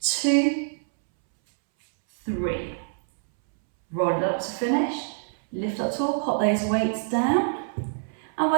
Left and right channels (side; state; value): left; silent; 61 dB below the other